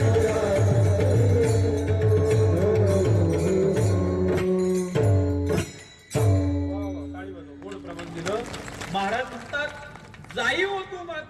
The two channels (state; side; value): identical; both; correlation 1.00